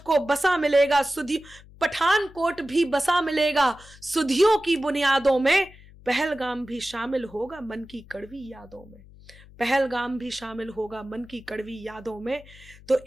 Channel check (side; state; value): left; noise; hum, 22 dB below the sound